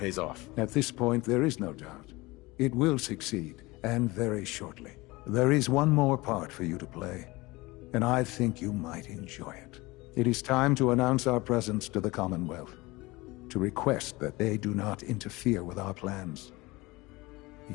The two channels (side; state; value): right; quieter; 22.1 dB